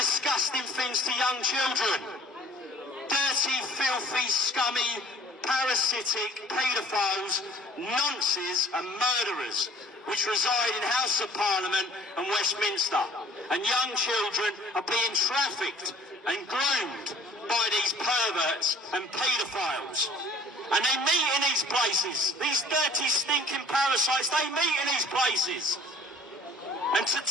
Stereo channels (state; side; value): normal; both; correlation 0.52